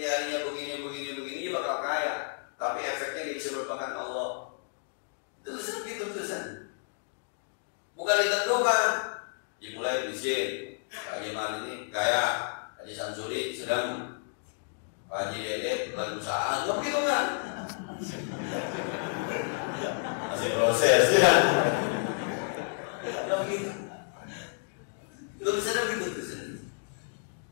begini, dia bakal kaya. Tapi efeknya dia bisa merupakan Allah. Tulisan gitu tulisan. Bukan ditentukan. Dimulai miskin. Pak Haji Mal ini kaya. Haji Samsuri sedang. Pak Haji Dede lagi usaha. Nggak begitu kan? Masih proses ya. Nggak begitu. Tulisannya begitu tulisan.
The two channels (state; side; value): silent; right; 57 dB below the other